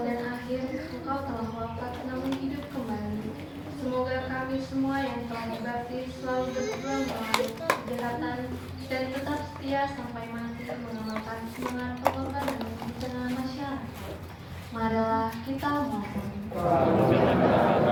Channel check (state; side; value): identical; both; correlation 1.00